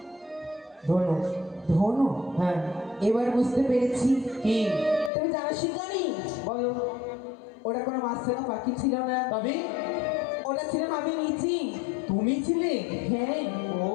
ধনু। ধনু? হ্যাঁ। এবার বুঝতে পেরেছি। কি? তুমি জানো শিকারী? বলো। ওটা কোনো মাছখানা পাখি ছিল না। তবে ওটা ছিলাম আমি নিজে। তুমি ছিলে? হ্যাঁ। ও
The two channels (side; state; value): right; drops out; at 5.1 s